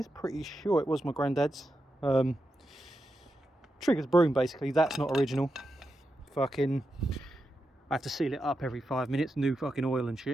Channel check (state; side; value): normal; both; correlation 0.87